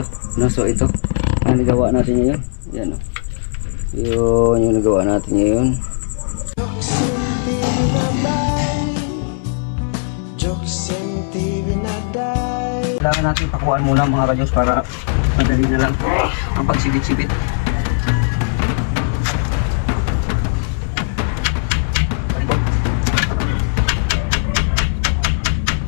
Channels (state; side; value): silent; right; digital silence